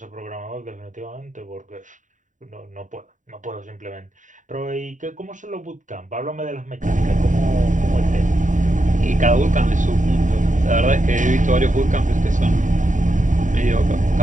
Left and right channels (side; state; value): left; late; 0.37 ms